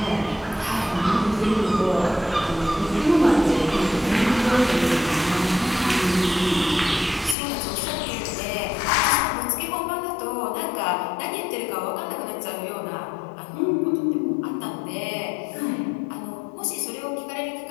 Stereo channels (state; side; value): drops out; right; at 7.4 s